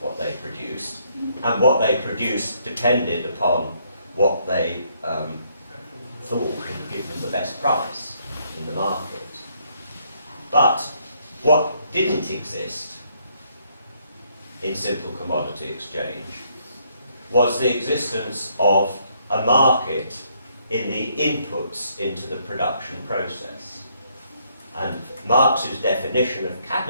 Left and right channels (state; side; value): inverted; both; correlation -0.70